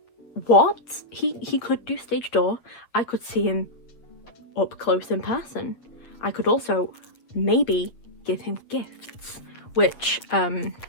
What? He could do stage door. I could see him up close in person. I could also maybe give him gifts, which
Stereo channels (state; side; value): late; right; 8.4 ms